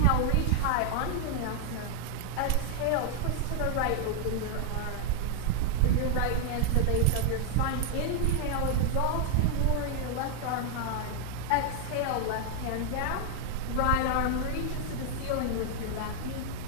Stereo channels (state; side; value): different; both; correlation 0.00